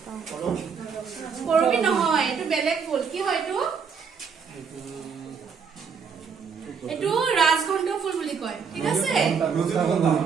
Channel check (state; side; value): quieter; left; 6.1 dB